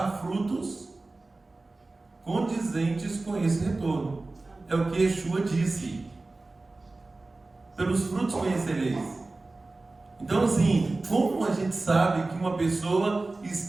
frutos condizentes com esse retorno. É o que Yeshua disse: pelos frutos conhecereis. Então, assim, como a gente sabe que uma pessoa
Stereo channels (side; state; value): left; quieter; 3.3 dB